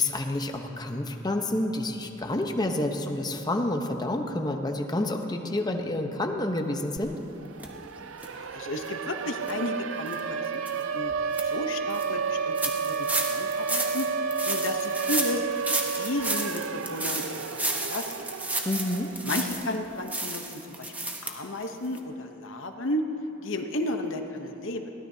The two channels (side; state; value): both; normal; correlation 0.19